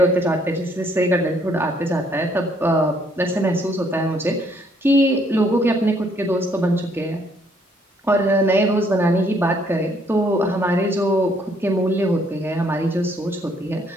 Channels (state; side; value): normal; both; correlation 0.67